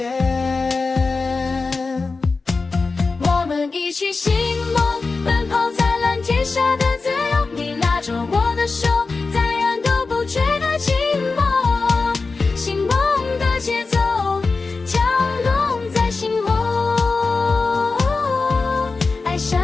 我们一起寻梦，奔跑在蓝天下的自由。你拉着我的手，再远都不觉得寂寞。醒梦的节奏，跳动在心窝，爱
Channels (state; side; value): quieter; right; 4.1 dB